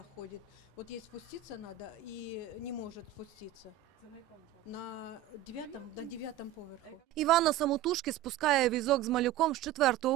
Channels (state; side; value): quieter; left; 11.7 dB